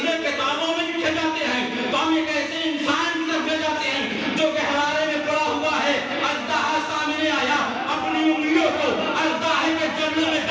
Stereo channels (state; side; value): identical; both; correlation 1.00